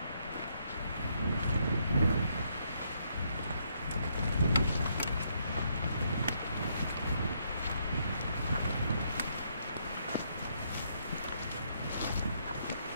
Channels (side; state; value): both; inverted; correlation -0.74